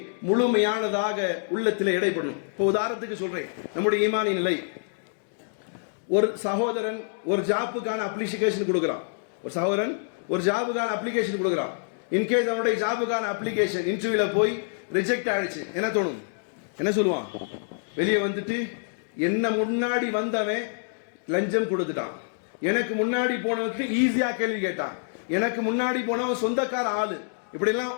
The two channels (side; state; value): right; silent; digital silence